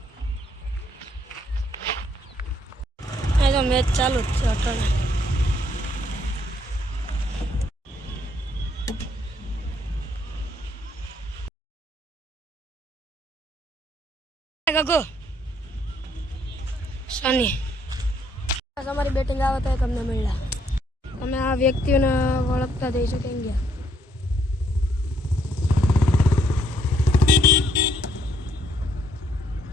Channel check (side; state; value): both; normal; correlation 0.69